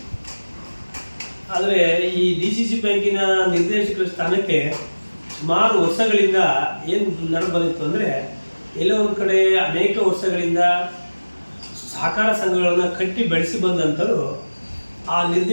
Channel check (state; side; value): inverted; both; correlation -1.00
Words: ಆದರೆ ಈ DCC ಬ್ಯಾಂಕಿನ ನಿರ್ದೇಶಕರ ಸ್ಥಾನಕ್ಕೆ ಸುಮಾರು ವರ್ಷಗಳಿಂದ ಏನು ನಡೆದು ಅಂದರೆ, ಎಲ್ಲೋ ಒಂದು ಕಡೆ ಅನೇಕ ವರ್ಷಗಳಿಂದ ಸಹಕಾರ ಸಂಘಗಳನ್ನು ಕಟ್ಟಿ ಬೆಳೆಸಿ ಬಂದಂಥರು ಆ